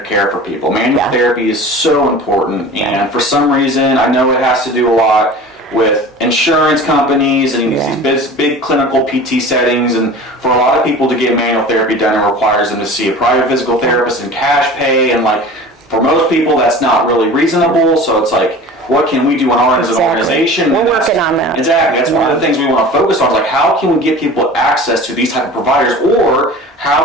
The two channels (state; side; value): normal; both; correlation 0.38